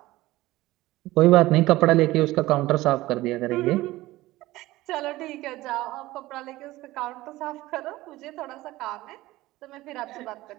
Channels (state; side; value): quieter; left; 17.9 dB